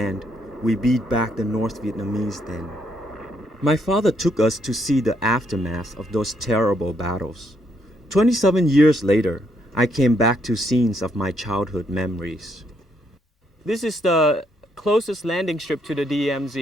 we beat back the North Vietnamese then. My father took us to see the aftermath of those terrible battles. 27 years later, I came back to scenes of my childhood memories. This is the closest landing strip to the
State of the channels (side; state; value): both; normal; correlation 0.73